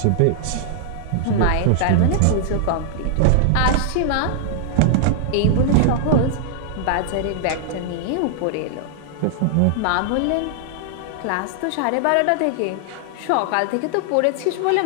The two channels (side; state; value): both; different; correlation -0.01